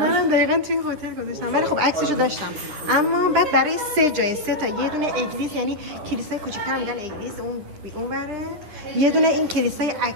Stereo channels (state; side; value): late; left; 10 ms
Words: دقیقاً توی هتل گذاشتم، ولی خب عکسشو داشتم. اما بعد برای 3 جای 3 تا، یه دونه اگلیس یعنی کلیسای کوچیک‌تر میگن اگلیس، اون بره، یه دونه این کلیسای